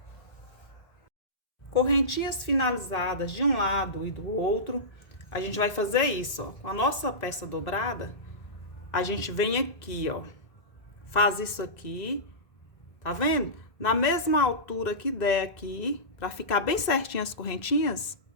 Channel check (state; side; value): late; right; 1.5 ms